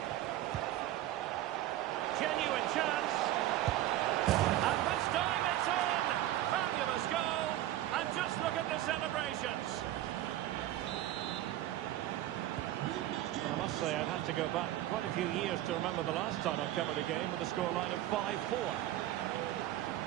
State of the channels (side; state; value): left; quieter; 14.0 dB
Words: Genuine chance. And this time it's in. Fabulous goal. And just look at the celebrations. I must say, I'd have to go back quite a few years to remember the last time I covered a game with a scoreline of 5-4.